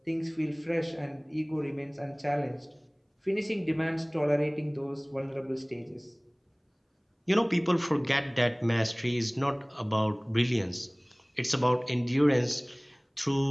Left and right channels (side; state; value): both; identical; correlation 1.00